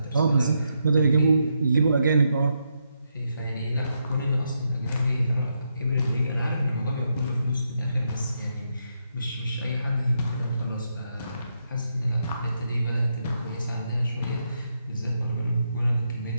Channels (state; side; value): inverted; both; correlation -0.81